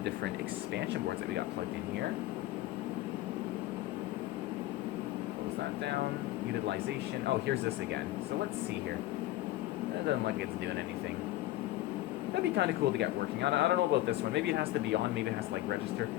expansion boards that we got plugged in here. That down. Utilization. Oh, here's this again. So let's see here. It doesn't look like it's doing anything. That'd be kind of cool to get working on. I don't know about this one. Maybe it has to be on. Maybe it has to like register.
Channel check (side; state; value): right; quieter; 16.0 dB